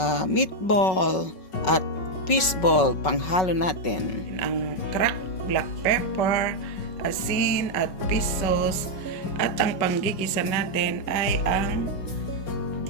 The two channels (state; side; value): late; right; 5.4 ms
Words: meatball, at fishball, panghalo natin. Ang cracked black pepper, asin, at fish sauce, at ang panggigisa natin ay ang